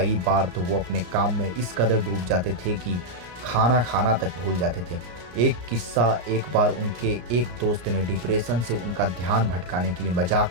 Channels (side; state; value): left; late; 34 ms